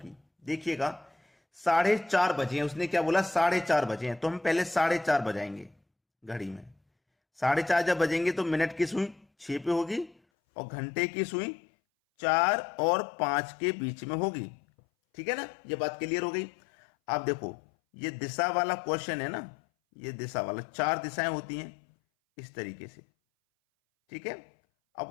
देखिएगा 4:30 बजे हैं, उसने क्या बोला 4:30 बजे हैं, तो हम पहले 4:30 बजाएंगे घड़ी में। 4:30 जब बजेंगे तो मिनट की सुई 6 पे होगी और घंटे की सुई 4 और 5 के बीच में होगी, ठीक है ना। ये बात क्लियर हो गई। आप देखो ये दिशा वाला क्वेश्चन है ना, ये दिशा वाला 4 दिशाएं होती हैं इस तरीके से, ठीक है। अब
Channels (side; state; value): right; drops out; at 10.2 s